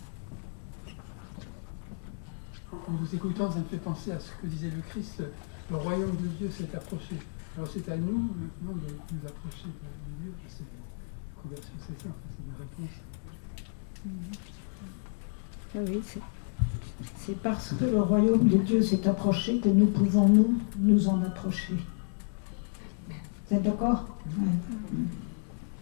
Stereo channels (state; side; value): silent; right; digital silence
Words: En vous écoutant, ça me fait penser à ce que disait le Christ, le royaume de Dieu s'est approché. Alors c'est à nous maintenant de nous approcher de Dieu. C'est la conversion, c'est ça, c'est une réponse. Oui, c'est parce que le royaume de Dieu s'est approché que nous pouvons nous en approcher. Vous êtes d'accord?